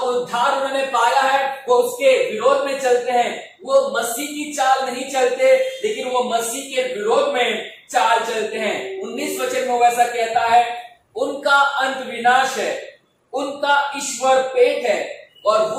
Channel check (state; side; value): identical; both; correlation 1.00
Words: उन्होंने पाया है वो उसके विरोध में चलते हैं। वो मसीह की चाल नहीं चलते, लेकिन वो मसीह के विरोध में चाल चलते हैं। 19 वचन में वैसा कहता है, उनका अंत विनाश है, उनका ईश्वर पेट है, और